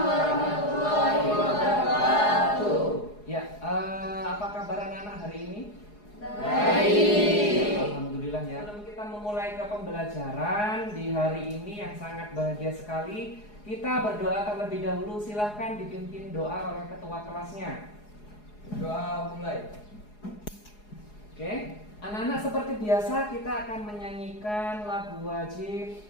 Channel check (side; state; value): right; late; 4.8 ms